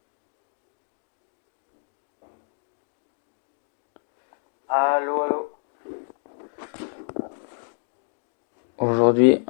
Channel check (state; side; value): silent; right; digital silence